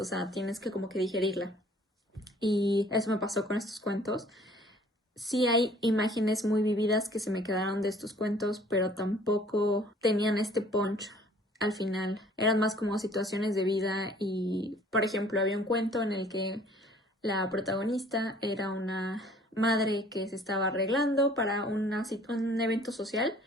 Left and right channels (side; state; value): both; normal; correlation 0.55